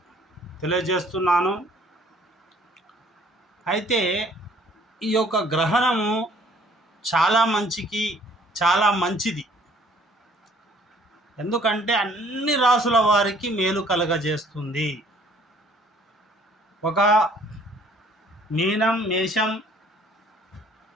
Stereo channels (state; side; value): normal; both; correlation 0.58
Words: తెలియజేస్తున్నాను. అయితే ఈ యొక్క గ్రహణము చాలా మంచిది. ఎందుకంటే అన్ని రాసుల వారికి మేలు కలగజేస్తుంది. ఒక మీనం, మేషం,